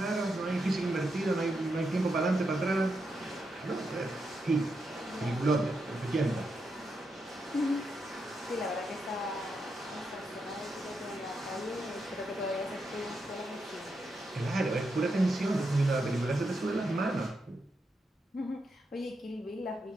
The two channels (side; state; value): both; normal; correlation 0.84